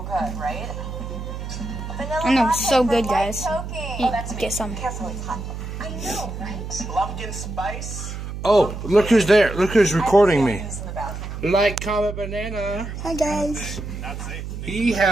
good, right? Vanilla I know, latte so for good, light guys. choking. Eat, That's get me. some. Careful, it's hot. I know, right? Pumpkin spice. Oh, look who's there. Look who's recording me. Use in the bathroom. Like, comment, banana. Hi guys. Not safe. He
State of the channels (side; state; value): right; noise; hum, 7 dB below the sound